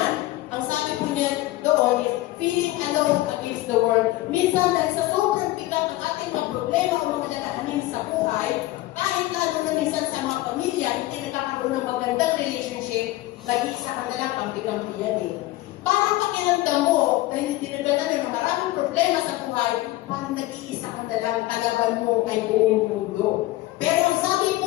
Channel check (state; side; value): quieter; right; 17.5 dB